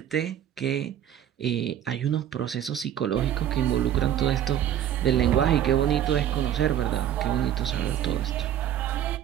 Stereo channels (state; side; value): quieter; left; 10.7 dB